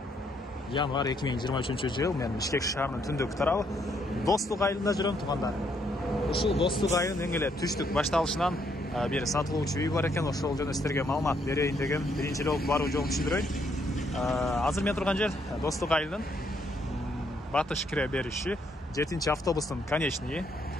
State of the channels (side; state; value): both; normal; correlation 0.72